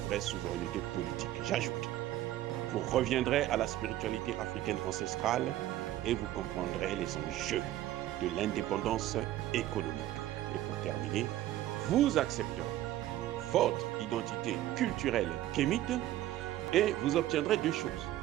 souveraineté politique. J'ajoute, vous reviendrez à la spiritualité africaine ancestrale et vous comprendrez les enjeux de l'indépendance économique. Et pour terminer, vous accepterez votre identité culturelle kémite et vous obtiendrez deux choses.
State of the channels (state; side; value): quieter; left; 14.0 dB